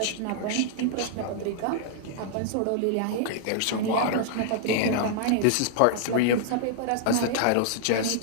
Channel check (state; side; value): different; both; correlation -0.01